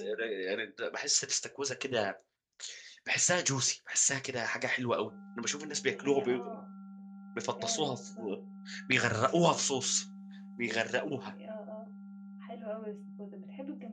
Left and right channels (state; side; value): identical; both; correlation 1.00